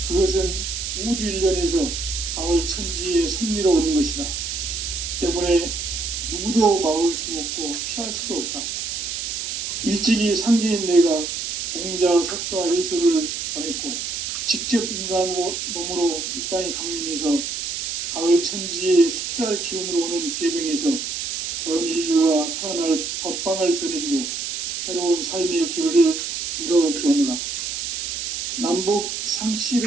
그것은 우주 일련에서 가을 천지의 섭리로 오는 것이다. 때문에 누구도 막을 수 없고 피할 수도 없다. 일찍이 상제인 내가 공자, 석가, 예수를 보냈고 직접 인간으로 몸으로 이 땅에 강림해서 가을 천지의 숲살 기운으로 오는 계병에서 전 인류가 살아날 법방을 전해주고 새로운 삶의 기회를 이뤄주었노라. 남북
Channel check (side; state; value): right; noise; hiss, 4 dB below the sound